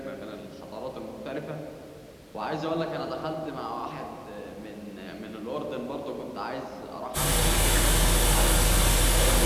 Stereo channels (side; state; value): both; identical; correlation 1.00